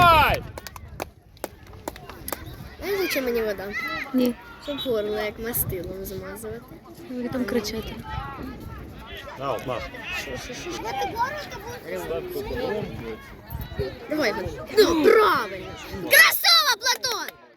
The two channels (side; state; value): both; identical; correlation 1.00